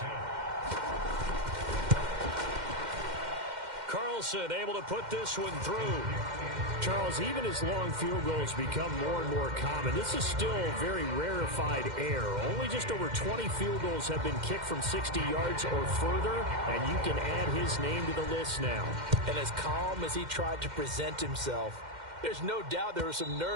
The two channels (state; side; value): late; left; 2.1 ms